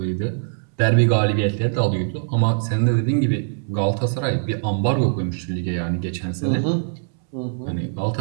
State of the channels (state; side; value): silent; left; 64 dB below the other